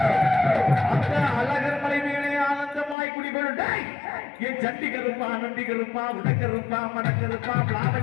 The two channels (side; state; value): right; drops out; at 3.0 s